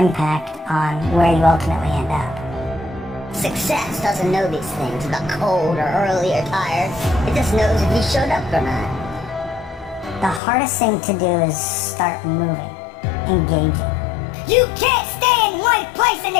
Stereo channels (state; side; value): drops out; right; at 10.4 s